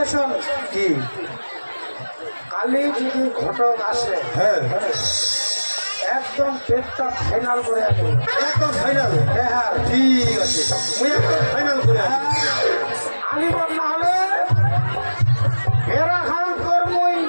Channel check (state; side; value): inverted; both; correlation -1.00